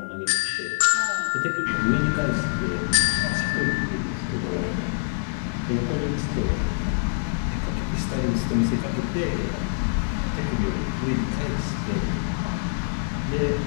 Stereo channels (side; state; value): right; silent; digital silence